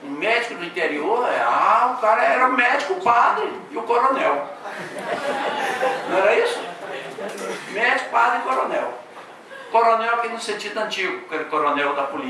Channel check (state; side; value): identical; both; correlation 1.00